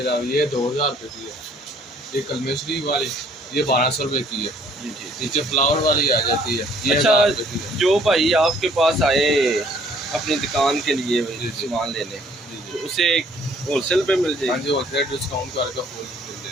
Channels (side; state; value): both; normal; correlation 0.60